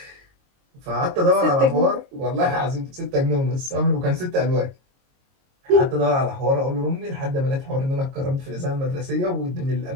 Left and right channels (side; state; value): left; late; 22 ms